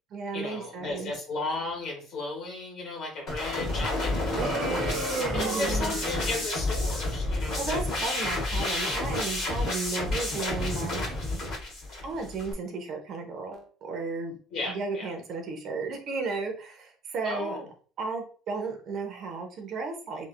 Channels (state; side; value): normal; both; correlation 0.59